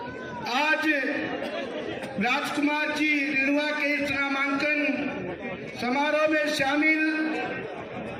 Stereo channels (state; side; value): identical; both; correlation 1.00